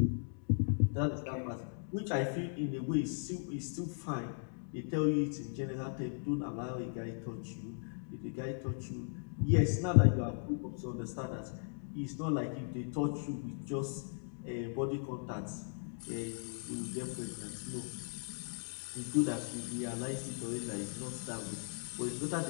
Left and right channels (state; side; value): silent; right; digital silence